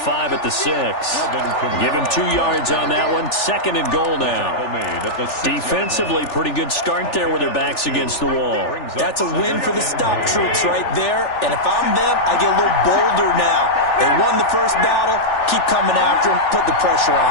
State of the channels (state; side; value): late; right; 3.4 ms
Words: at the 6. Give him 2 yards on that one. Second and goal now. Defensively, pretty good start there with their backs against the wall. That's a win for the stop troops right there. And if I'm them, I get a little bolder now. They won the first battle. Keep coming after them. Put the pressure